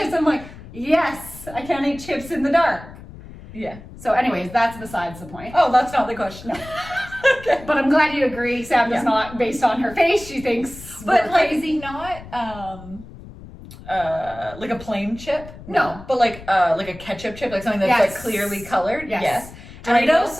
I'm like, yes, I can't eat chips in the dark. Yeah. So anyways, that's besides the point. Oh, that's not the question. No. Okay. But I'm glad you agree. Sam does not, based on her face, she thinks But we're like, crazy. not, like a plain chip? No. But like a ketchup chip, like something that's Yes. like clearly colored? Yes. And I would Doritos?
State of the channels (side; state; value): left; noise; rumble, 16 dB below the sound